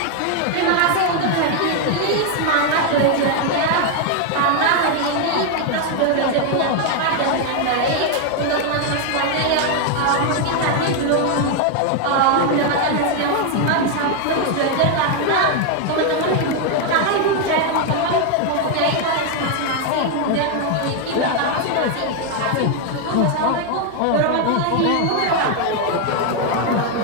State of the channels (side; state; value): both; different; correlation 0.01